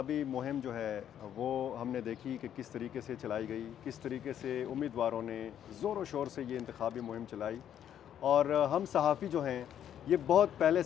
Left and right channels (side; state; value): right; quieter; 10.0 dB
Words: مہم جو ہے وہ ہم نے دیکھی کہ کس طریقے سے چلائی گئی، کس طریقے سے امیدواروں نے زور و شور سے یہ انتخابی مہم چلائی، اور ہم صحافی جو ہیں یہ بہت پہلے